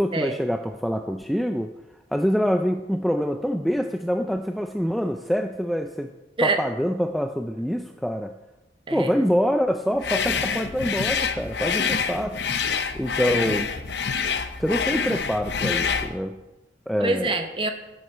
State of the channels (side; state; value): both; normal; correlation 0.70